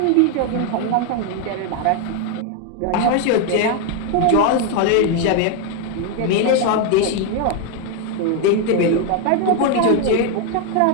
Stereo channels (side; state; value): both; different; correlation 0.01